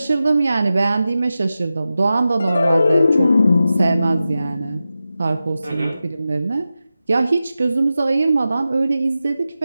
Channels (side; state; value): both; inverted; correlation -0.92